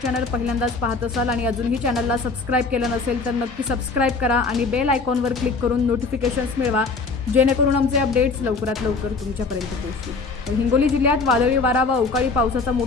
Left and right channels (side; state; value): right; quieter; 4.2 dB